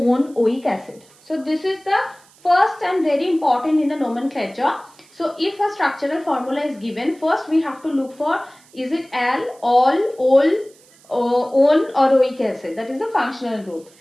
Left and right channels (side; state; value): right; noise; hiss, 28 dB below the sound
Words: oic acid. So this is the first and very important in the nomenclature. So if a structural formula is given, first we have to look for, is it al, ol, on or oic acid. That is the functional group.